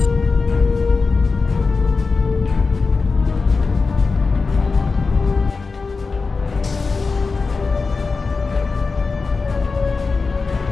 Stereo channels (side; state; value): right; quieter; 4.4 dB